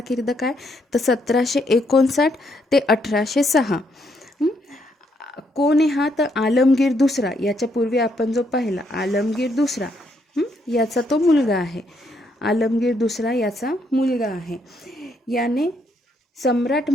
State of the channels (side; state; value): both; normal; correlation 0.74